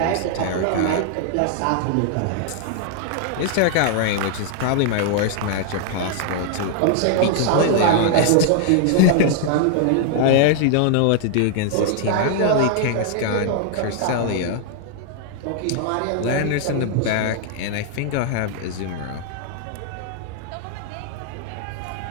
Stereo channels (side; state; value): both; different; correlation 0.00